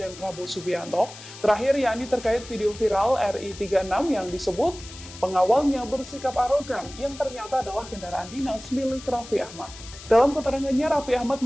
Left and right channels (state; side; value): noise; left; hiss, 16 dB below the sound